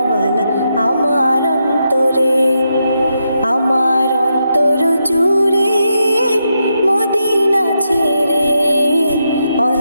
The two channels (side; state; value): both; inverted; correlation -0.83